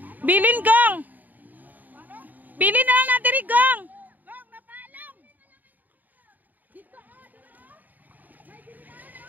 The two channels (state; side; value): late; left; 0.084 ms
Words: Bilin gang! Bilin na lang natin rin gang!